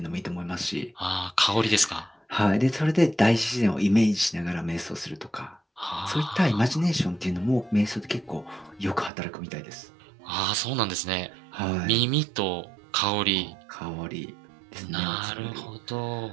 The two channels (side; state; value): left; drops out; at 9.1 s